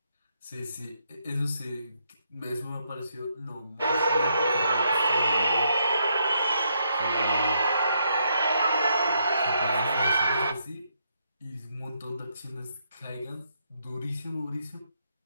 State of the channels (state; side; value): inverted; both; correlation -0.77